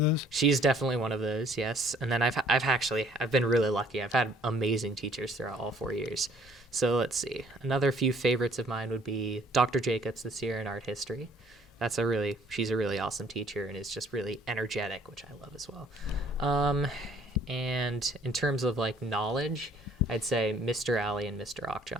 She's definitely one of those, yes. And then I've been really lucky. I've had amazing teachers throughout all 4 years. So let's see. Another few favorites of mine would be Dr. Jacobs this year in art history. She's a really awesome teacher and is just really energetic, which I love as well. And in terms of like knowledge, I'd say Mr. Alley and Mr.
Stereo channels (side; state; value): both; normal; correlation 0.60